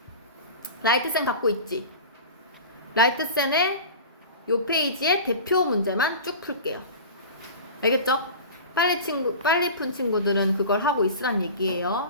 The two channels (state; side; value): inverted; both; correlation -0.34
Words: 라이트센 갖고 있지? 라이트센의 요 페이지에 대표 문제만 쭉 풀게요. 알겠죠? 빨리 푼 친구들은 그걸 하고 있으란